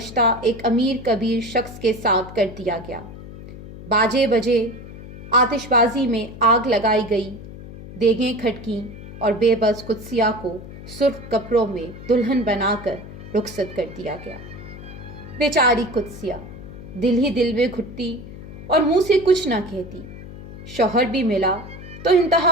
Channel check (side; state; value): left; noise; hum, 14 dB below the sound